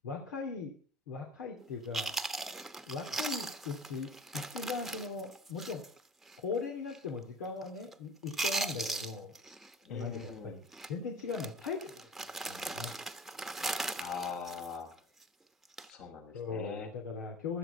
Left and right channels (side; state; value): both; normal; correlation 0.43